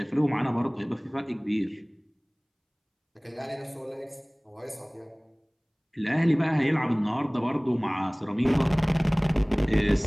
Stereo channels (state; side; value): identical; both; correlation 1.00